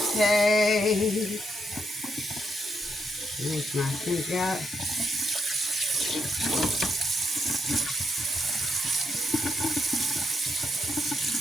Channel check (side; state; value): both; normal; correlation 0.79